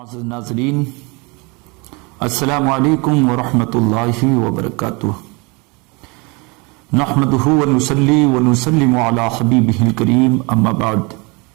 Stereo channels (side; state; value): left; quieter; 28.5 dB